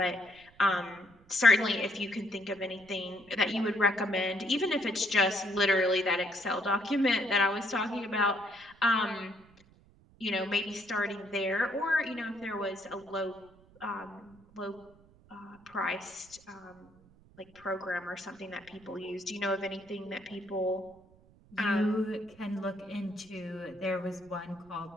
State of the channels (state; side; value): noise; right; rumble, 27 dB below the sound